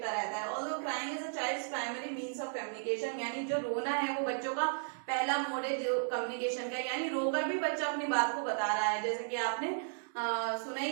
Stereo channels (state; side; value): silent; left; digital silence